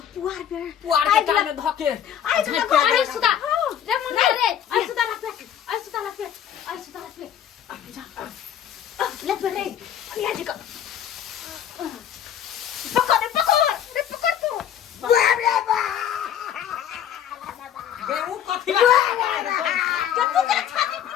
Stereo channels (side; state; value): right; quieter; 9.6 dB